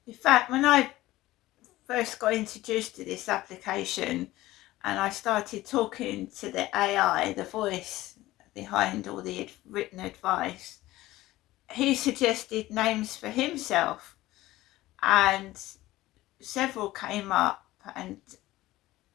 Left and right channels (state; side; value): quieter; right; 16.9 dB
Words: In fact, when I first got introduced to this application and I started talking to the AI, the voice behind all the written advice, he suggested names for himself, and several came up, and